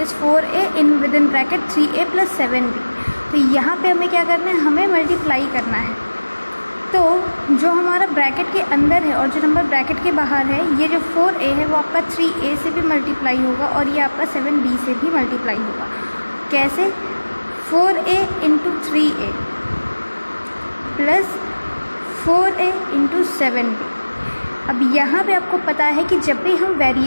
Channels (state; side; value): inverted; both; correlation -1.00